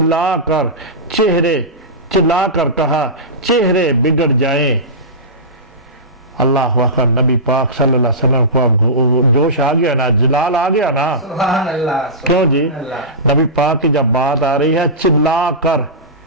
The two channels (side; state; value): both; normal; correlation -0.19